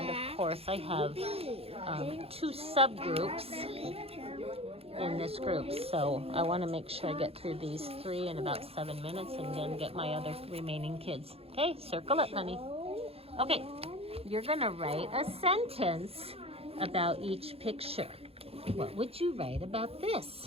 of course, I have 2 subgroups in this group. So I want to make sure I get through these 3 in about 7 minutes and then get my other remaining kids. Okay, circle it, honey. Okay, you're going to write a sentence about each picture. What would you write about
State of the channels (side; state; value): left; late; 0.28 ms